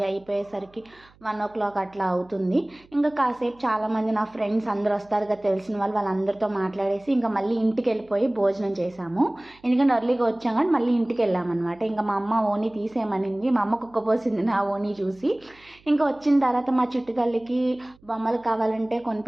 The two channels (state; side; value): noise; right; hum, 29 dB below the sound